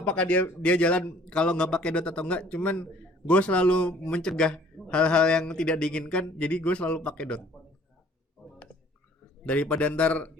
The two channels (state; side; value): normal; both; correlation 0.56